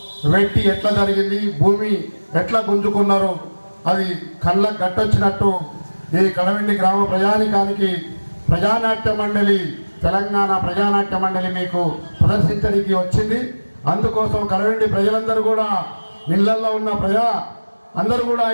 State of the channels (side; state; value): both; inverted; correlation -1.00